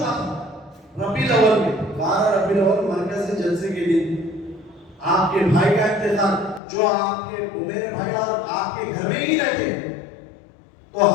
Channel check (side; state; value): right; drops out; at 6.6 s